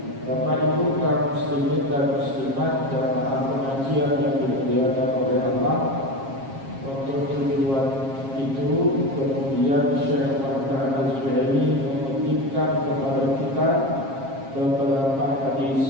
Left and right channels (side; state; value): left; late; 7.4 ms